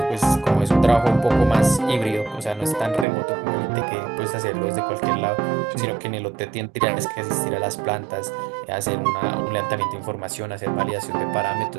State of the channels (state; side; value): drops out; left; at 3.1 s